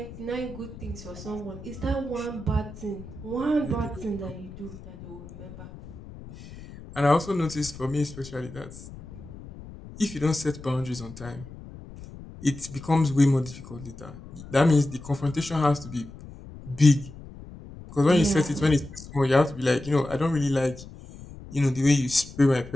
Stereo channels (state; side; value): noise; left; rumble, 15 dB below the sound